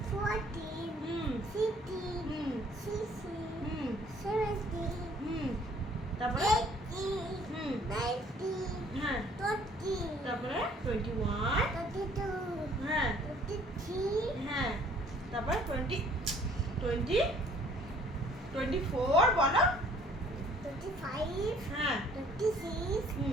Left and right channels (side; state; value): both; normal; correlation 0.58